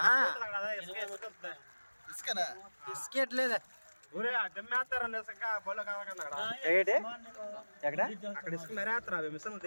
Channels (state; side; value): inverted; both; correlation -1.00